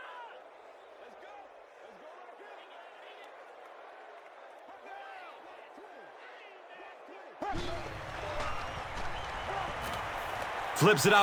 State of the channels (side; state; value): both; identical; correlation 1.00